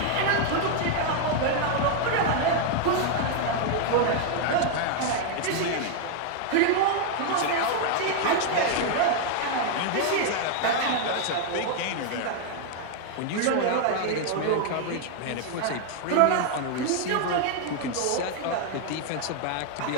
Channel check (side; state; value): both; different; correlation 0.00